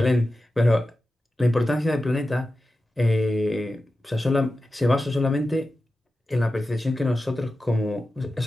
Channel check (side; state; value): both; normal; correlation 0.93